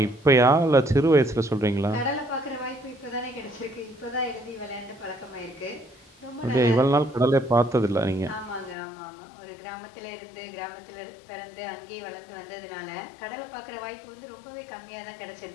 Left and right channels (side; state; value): right; drops out; at 8.8 s